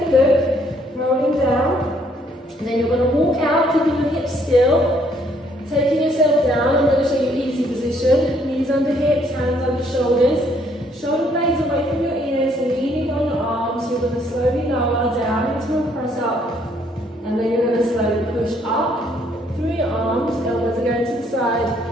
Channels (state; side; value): normal; both; correlation 0.67